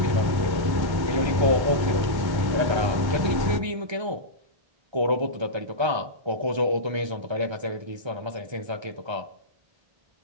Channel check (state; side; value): late; left; 1.3 ms